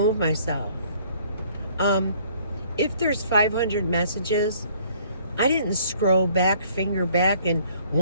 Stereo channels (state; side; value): inverted; both; correlation -0.59